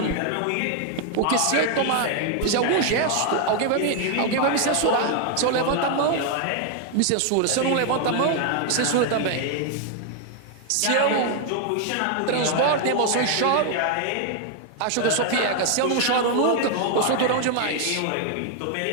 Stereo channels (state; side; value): different; both; correlation 0.00